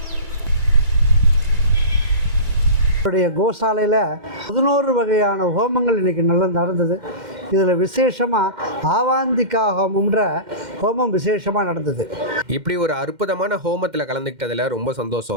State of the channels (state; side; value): late; left; 2.1 ms